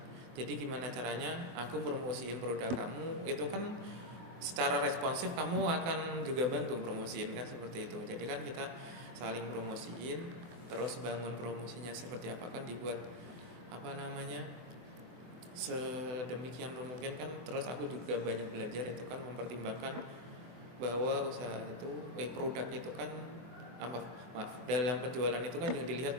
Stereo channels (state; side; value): late; left; 24 ms